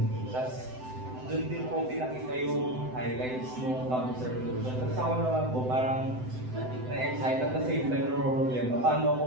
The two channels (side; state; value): left; late; 7.9 ms